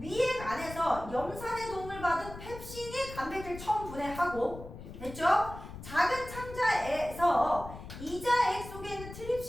안에서 염산의 도움을 받은 펩신이 단백질 처음 분해하고, 됐죠? 작은 창자에서 이자액 속에 있는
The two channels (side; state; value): left; noise; rumble, 13 dB below the sound